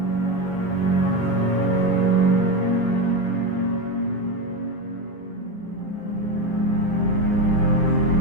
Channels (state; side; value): late; right; 10 ms